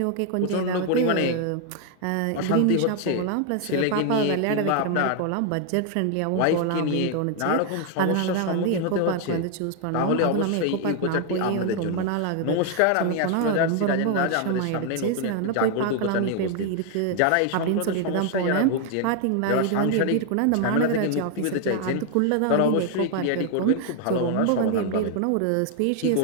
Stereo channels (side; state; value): both; different; correlation 0.00